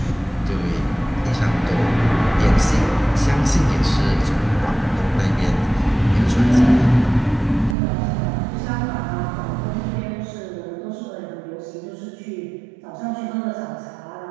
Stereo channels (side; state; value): left; drops out; at 7.8 s